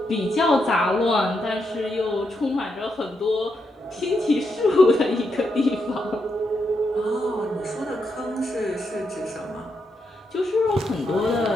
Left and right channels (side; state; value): both; normal; correlation 0.82